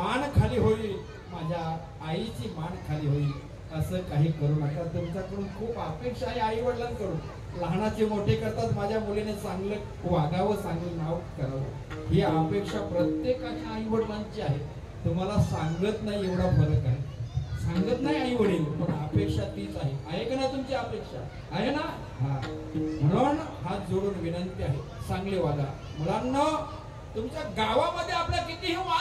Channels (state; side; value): identical; both; correlation 1.00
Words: खाली होईल, माझ्या आईची मान खाली होईल, असं काही करू नका। तुमच्याकडून खूप अपेक्षा आहे आई वडिलांकडून, लहानाचे मोठे करतात, माझ्या मुलीने चांगलं वागावं, चांगलं नाव करावं, ही अपेक्षा प्रत्येकाच्या आई वडिलांची आहे। तुम्हाला सांगत नाही एवढा फरक आहे, सांगत नाही आई वडील, पण अपेक्षा तीच आहे का ना, तुमची अपेक्षा आहे ना? म्हणून हात जोडून विनंती आहे, चांगले वागा मुलांना। तुमच्या गावामध्ये आपला कितीही